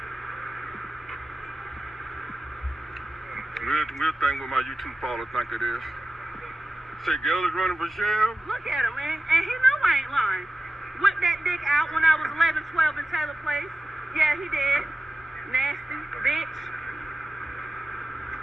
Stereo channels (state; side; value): normal; both; correlation 0.93